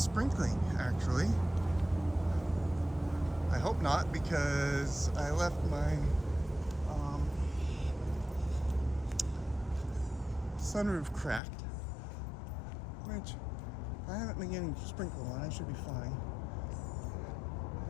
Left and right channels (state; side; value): drops out; right; at 11.4 s